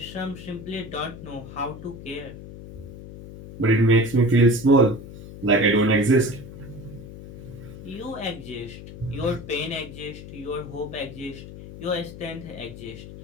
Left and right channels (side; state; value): left; noise; hum, 13 dB below the sound